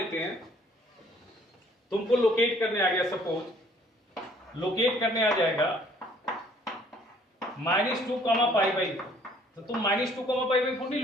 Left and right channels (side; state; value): both; normal; correlation 0.59